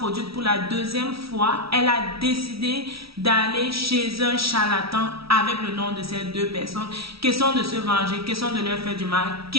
pour la deuxième fois, elle a décidé d'aller chez un charlatan avec le nom de ces deux personnes. Question de se venger, question de leur faire du mal,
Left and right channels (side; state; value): left; late; 0.76 ms